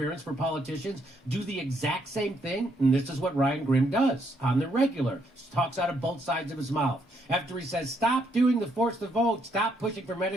for politicians do the exact same thing. And this is what Ryan Grimm does on the regular. Talks out of both sides of his mouth. After he says, stop doing the force to vote, stop pushing for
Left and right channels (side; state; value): both; normal; correlation 0.73